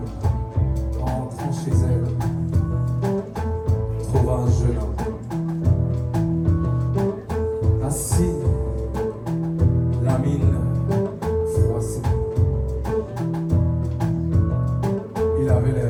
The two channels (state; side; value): identical; both; correlation 1.00